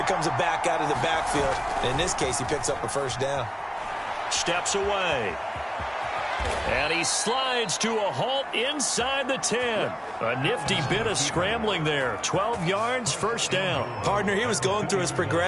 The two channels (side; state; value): both; identical; correlation 1.00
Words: comes a back out of the backfield. And in this case, he picks up a 1st down. Steps away. And he slides to a halt inside the 10. A nifty bit of scrambling there. 12 yards, 1st down. Partner, he was going through his